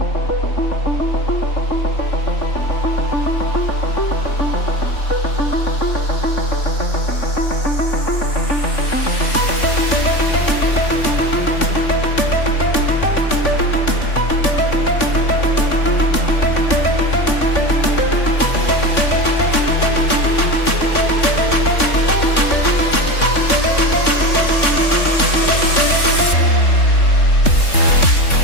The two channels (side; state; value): right; late; 3.6 ms